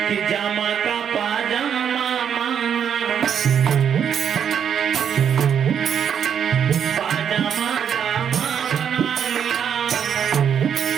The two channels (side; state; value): left; quieter; 8.2 dB